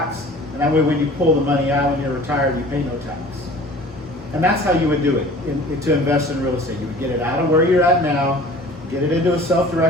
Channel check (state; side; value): normal; both; correlation 0.45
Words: and that way when you pull the money out when you're retired, you pay no tax. And that's how you would do it to invest in real estate. You would get it out of where you're at now, get it into a